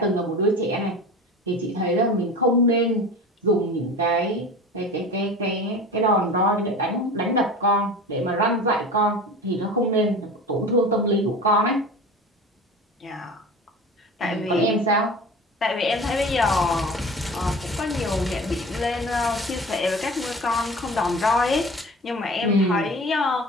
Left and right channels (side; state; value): both; normal; correlation 0.36